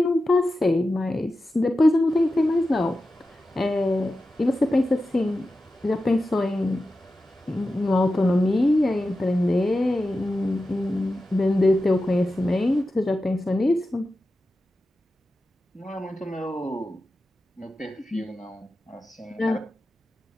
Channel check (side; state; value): both; normal; correlation 0.92